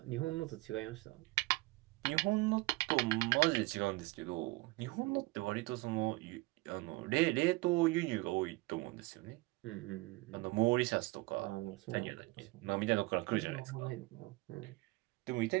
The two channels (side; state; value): left; quieter; 21.4 dB